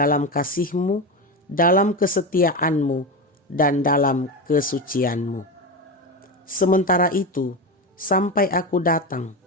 kasihmu, dalam kesetiaanmu, dan dalam kesucianmu. Sementara itu, sampai aku datang,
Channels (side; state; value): both; normal; correlation 0.19